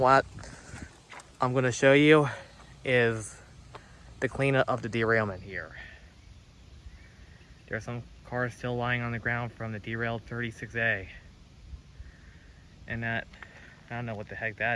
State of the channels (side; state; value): both; identical; correlation 1.00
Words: I'm going to show you is the cleanup of the derailment here. There are some cars still lying on the ground from the derailed 36A. And that, I don't know what the heck